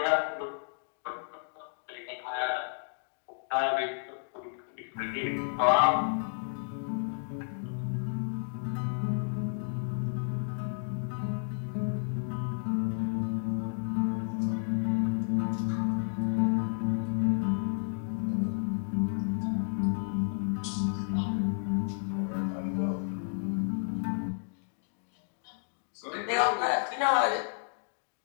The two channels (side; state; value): right; silent; digital silence